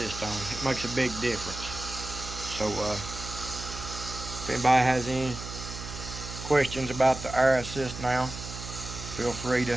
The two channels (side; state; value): right; noise; hum, 10 dB below the sound